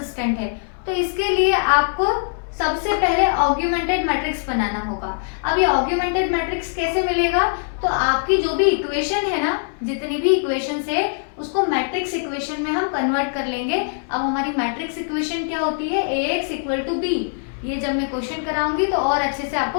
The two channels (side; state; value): right; silent; digital silence